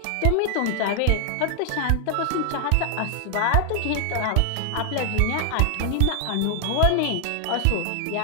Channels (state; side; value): different; both; correlation 0.00